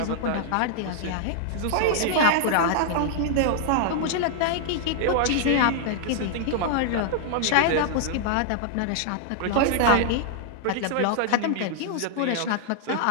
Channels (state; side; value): different; both; correlation -0.01